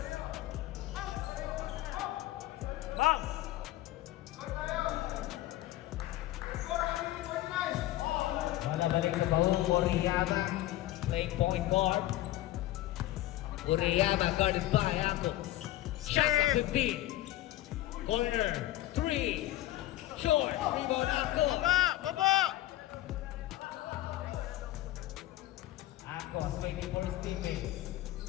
Bang! Wala balik sa Paul. Uriyama playing point guard. Uriyama guarded by Acos. Shot at 15. Corner. 3. Short. Rebound Acos. Baba. Acos waiting for his teammates.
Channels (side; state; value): right; quieter; 15.3 dB